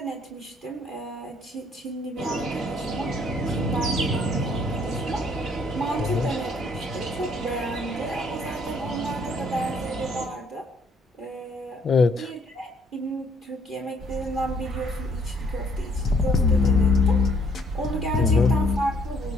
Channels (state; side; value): normal; both; correlation 0.65